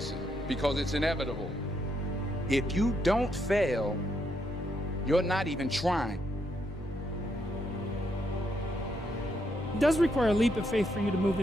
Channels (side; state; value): both; normal; correlation 0.77